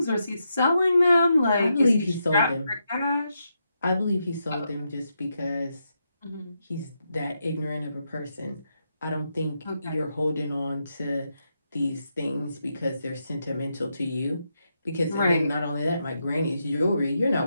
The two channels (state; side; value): inverted; both; correlation -0.83